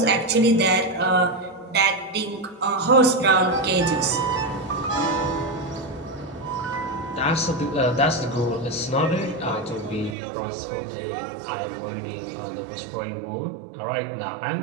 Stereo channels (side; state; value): left; drops out; at 10.2 s